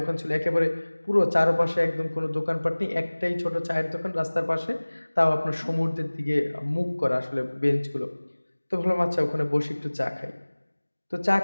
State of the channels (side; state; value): both; inverted; correlation -1.00